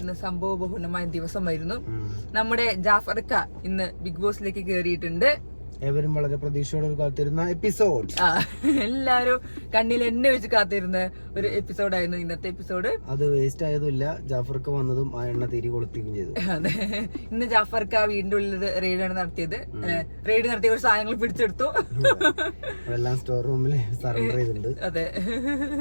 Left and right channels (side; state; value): both; inverted; correlation -1.00